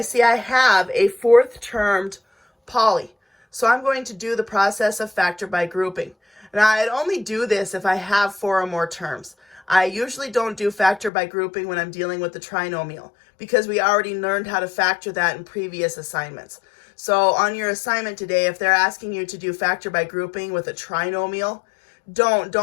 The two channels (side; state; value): right; drops out; at 11.1 s